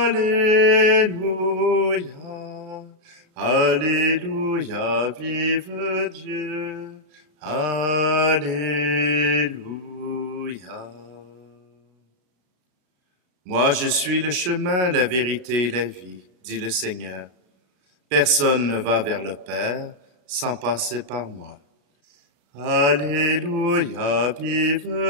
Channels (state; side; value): late; left; 35 ms